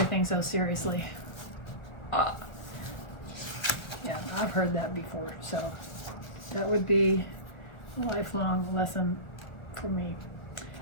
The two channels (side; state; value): right; late; 1.4 ms